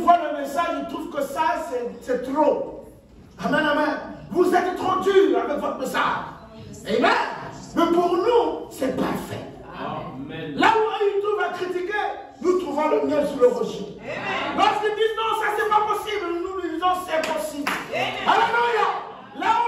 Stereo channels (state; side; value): identical; both; correlation 1.00